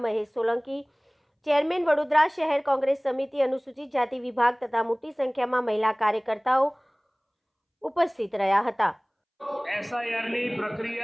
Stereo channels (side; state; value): both; identical; correlation 1.00